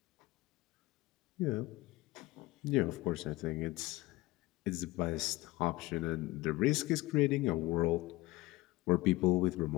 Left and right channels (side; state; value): right; quieter; 20.1 dB